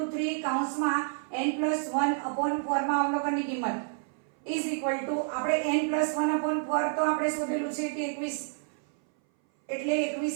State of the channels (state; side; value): silent; left; 58 dB below the other